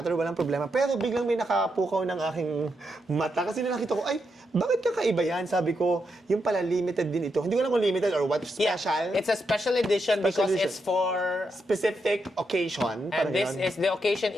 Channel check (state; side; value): normal; both; correlation 0.83